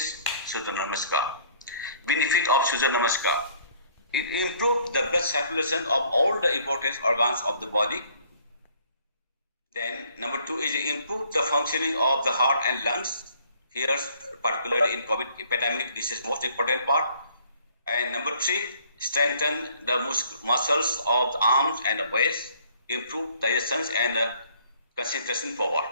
Surya Namaskar. Benefit of Surya Namaskar. It improves the blood circulation of all the important organs of the body. Then number 2 is improve the functioning of the heart and lungs. Here, particularly in COVID epidemic, this is most important part. And number 3, strengthen the muscles of the arms and the waist, improve digestion and concentration power.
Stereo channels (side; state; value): both; inverted; correlation -0.59